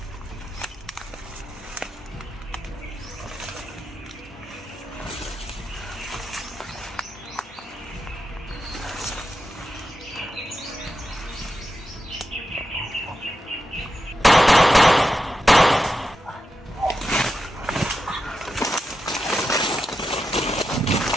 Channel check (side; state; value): both; normal; correlation 0.89